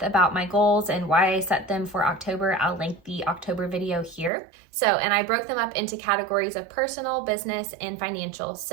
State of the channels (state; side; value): drops out; left; at 4.3 s